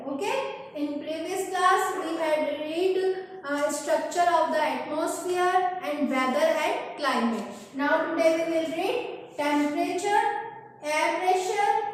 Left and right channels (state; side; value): identical; both; correlation 1.00